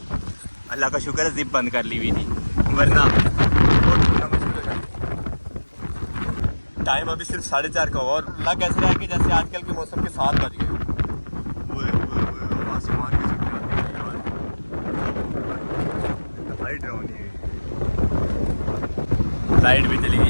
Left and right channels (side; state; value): both; inverted; correlation -1.00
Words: अल्लाह का शुक्र है जिप बंद कर ली हुई थी, वरना बहुत ढूंढना मुश्किल हो जाता। टाइम अभी सिर्फ 4:30 का हुआ और लग ऐसे रहा है कि जैसे आजकल के मौसम के 7 बज गए। आसमान की लाइट भी चली गई